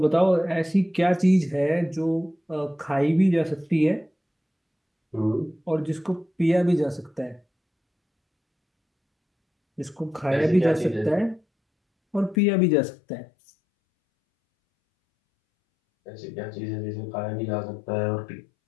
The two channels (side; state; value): right; drops out; at 12.4 s